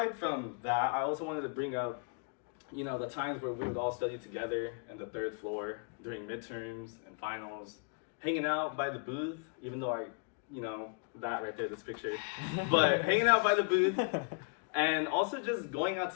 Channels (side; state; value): right; quieter; 37.3 dB